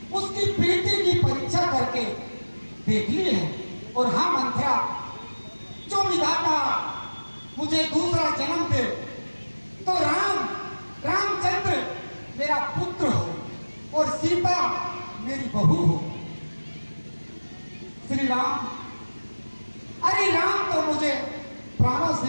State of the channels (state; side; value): inverted; both; correlation -1.00